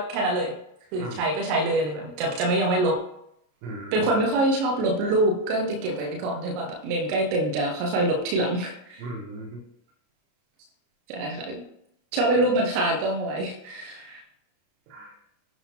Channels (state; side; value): late; left; 33 ms